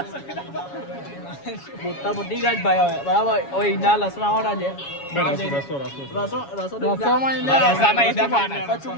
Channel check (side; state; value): right; late; 7.2 ms